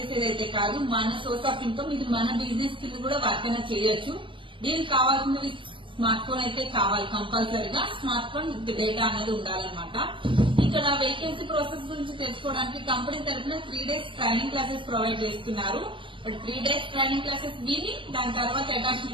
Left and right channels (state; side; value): late; left; 0.25 ms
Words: కాదు, మన సోర్స్ ఆఫ్ ఇన్కమ్. ఇది మన బిజినెస్ కింద కూడా వర్క్ అయినా చేయొచ్చు. దీనికి కావాల్సినవి స్మార్ట్ ఫోన్ అయితే కావాలి కంపల్సరీగా. స్మార్ట్ ఫోన్ డేటా అనేది ఉండాలన్నమాట. ఇక్కడ వేకెన్సీ ప్రాసెస్ గురించి తెలుసుకోవడానికి కంపెనీ తరఫున 3 days ట్రైనింగ్ క్లాసెస్ ప్రొవైడ్ చేస్తున్నారు. బట్ 3 days ట్రైనింగ్ క్లాసెస్ విని దాని తర్వాత